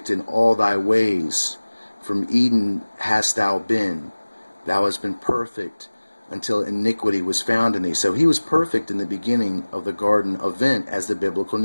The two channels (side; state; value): both; inverted; correlation -1.00